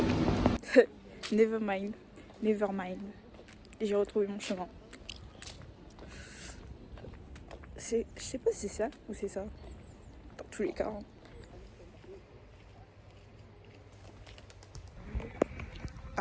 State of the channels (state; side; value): identical; both; correlation 1.00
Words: Never mind. Never mind. J'ai retrouvé mon chemin. Je sais pas si c'est ça ou c'est ça. Dans tous les cas. Hein.